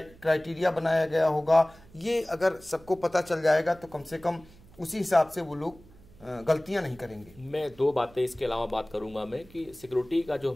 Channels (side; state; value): right; noise; hum, 24 dB below the sound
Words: बनाया गया होगा, ये अगर सबको पता चल जाएगा तो कम से कम उसी हिसाब से वो लोग गलतियां नहीं करेंगे। मैं दो बातें इसके अलावा बात करूंगा मैं कि सिक्योरिटी का जो